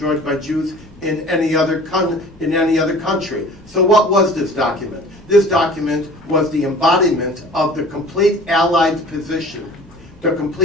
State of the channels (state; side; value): noise; left; hum, 27 dB below the sound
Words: by Jews in any other country. So what was this document? This document was the embodiment of the complete Allied position, the